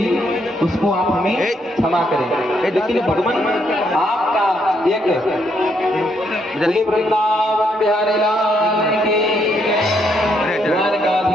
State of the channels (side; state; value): both; normal; correlation 0.74